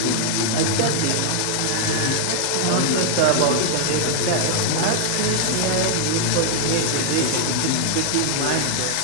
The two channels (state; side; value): different; both; correlation 0.00